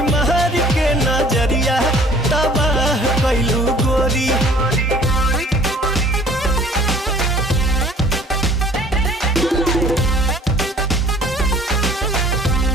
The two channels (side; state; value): both; normal; correlation 0.52